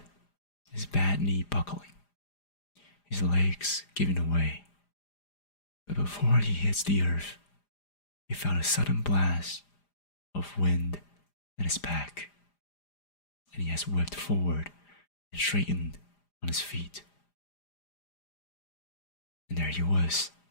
his bad knee buckling, his legs giving away. But before he hits the earth, he felt a sudden blast of wind at his back, and he has whipped forward and straightened on his feet. And there he was,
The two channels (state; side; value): late; right; 4.9 ms